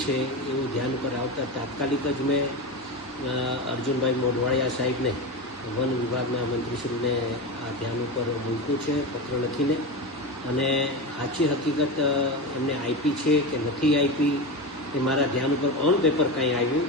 છે એવું ધ્યાન ઉપર આવતા તાત્કાલિક જ મેં અર્જુનભાઈ મોઢવાડિયા સાહેબને વન વિભાગના મંત્રીશ્રીને આ ધ્યાન ઉપર મૂક્યું છે પત્ર લખીને, અને સાચી હકીકત એમને આપી છે કે નથી આપી એ મારા ધ્યાન ઉપર ઓન પેપર કાંઈ આવ્યું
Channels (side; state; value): both; normal; correlation 0.21